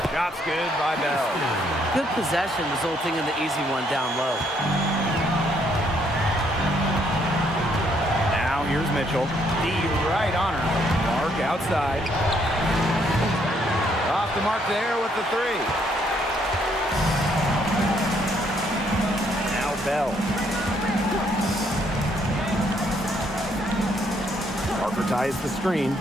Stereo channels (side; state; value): both; normal; correlation 0.70